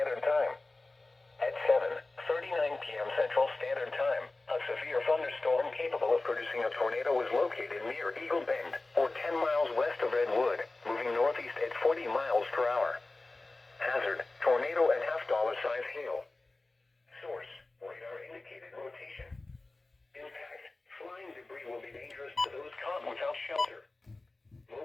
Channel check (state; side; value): quieter; right; 3.1 dB